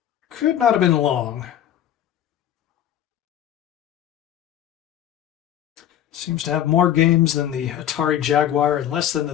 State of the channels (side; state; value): right; quieter; 10.9 dB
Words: Could not have been long. Seems to have more games than the Atari Jaguar and less than